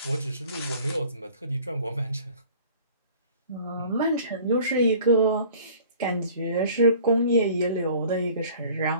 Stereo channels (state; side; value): inverted; both; correlation -0.49